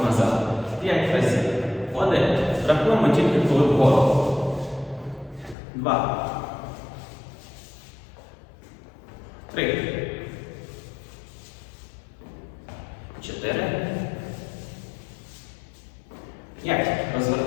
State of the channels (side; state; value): right; drops out; at 5.6 s